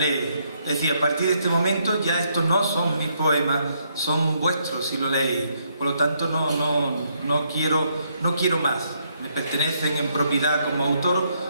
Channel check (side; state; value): both; inverted; correlation -0.73